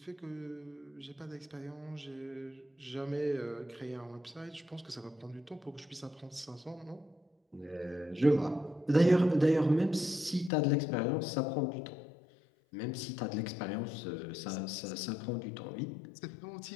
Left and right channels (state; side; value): drops out; right; at 10.5 s